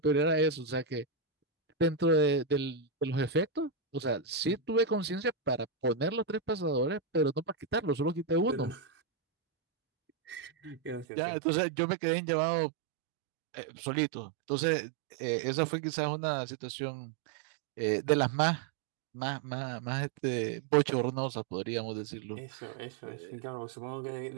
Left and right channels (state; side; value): drops out; left; at 11.1 s